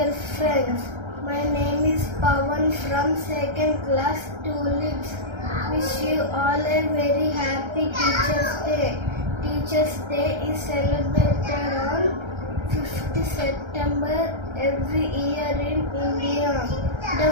friends. My name is Pawan from 2nd class Tulips. Wish you all a very happy Teachers' Day. Teachers' Day is celebrated on 5th September every year in India. The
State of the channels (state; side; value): late; left; 1.3 ms